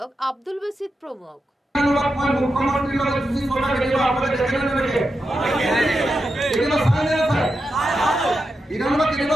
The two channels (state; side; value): normal; both; correlation 0.88